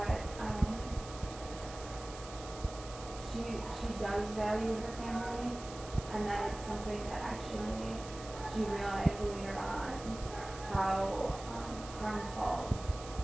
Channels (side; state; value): right; noise; hiss, 14 dB below the sound